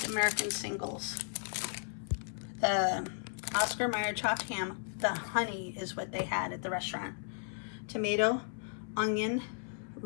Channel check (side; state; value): right; silent; 54 dB below the other